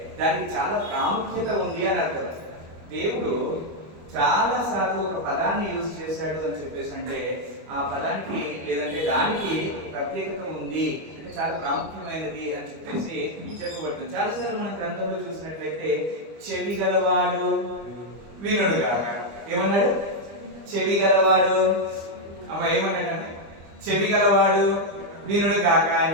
దానికి చాలా ప్రాముఖ్యత ఉంది అని అర్థం. దేవుడు చాలా సార్లు ఒక పదాన్ని యూజ్ చేశాడు అని చెప్పేసి అంటే ఆ పదానికి లేదంటే దానికి ప్రత్యేకత ఉంది, అంటే చాలా ప్రాముఖ్యమైనది అని చెప్పేసి చెప్పబడుతుంది. చాలాసార్లు మన గ్రంథంలో చూసినట్లయితే చెవి గలవాడు వినుడు గాక. ఏమన్నాడు? చెవి గలవాడు. అమ్మ ఏమన్నాడు? చెవి గలవాడు వినుడు కాక అని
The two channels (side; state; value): left; late; 25 ms